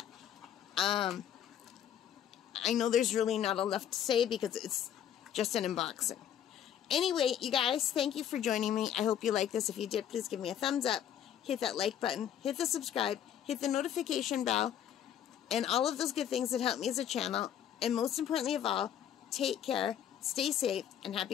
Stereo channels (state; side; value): quieter; right; 9.9 dB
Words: I know there's really not enough to say because it's just an unboxing. Anyway, you guys, thank you for joining me. I hope you like this. If you did, please give me a thumbs up. Hit that like button. Hit the subscribe. Hit the notification bell. And all of those good things that help me as a channel. And most importantly of all, take care, stay safe, and